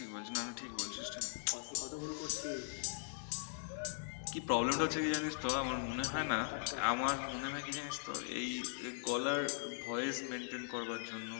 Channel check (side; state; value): right; silent; 51 dB below the other